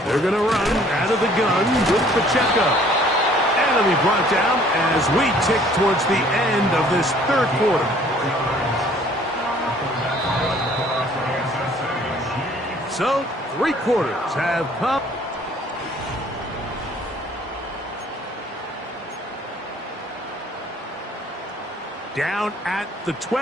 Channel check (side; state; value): both; normal; correlation 0.57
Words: They're going to run out of the gun with Pacheco. And he'll be brought down as we tick towards the end of this 3rd quarter. So, 3 quarters have come. Down at the